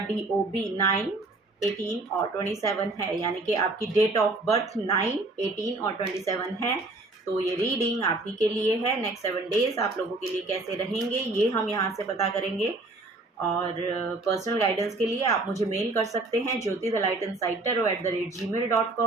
DOB 9, 18 और 27 है, यानी कि आपकी डेट ऑफ बर्थ 9, 18 और 27 है, तो ये रीडिंग आप ही के लिए है। नेक्स्ट 7 डेज आप लोगों के लिए कैसे रहेंगे ये हम यहाँ से पता करेंगे। और पर्सनल गाइडेंस के लिए आप मुझे मेल कर सकते हैं Jyoti the light inside tarot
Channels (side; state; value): left; quieter; 3.1 dB